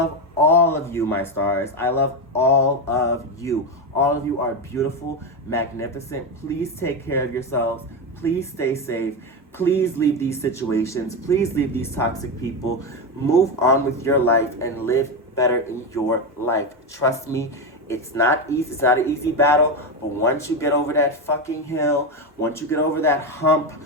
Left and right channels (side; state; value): both; normal; correlation 0.12